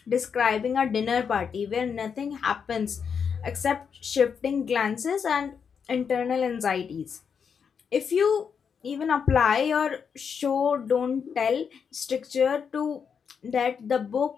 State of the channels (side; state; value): right; quieter; 6.7 dB